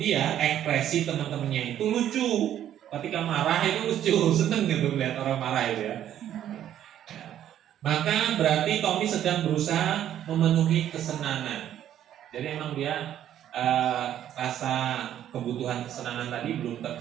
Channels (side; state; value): left; quieter; 11.0 dB